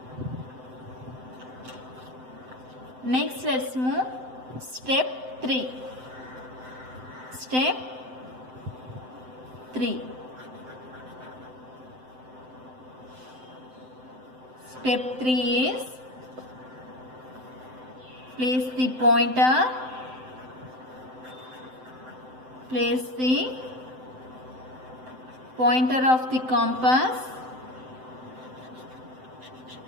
Next, let's move step 3. Step 3. Step 3 is place the pointer. Place the pointer of the compass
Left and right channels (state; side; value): late; left; 7.8 ms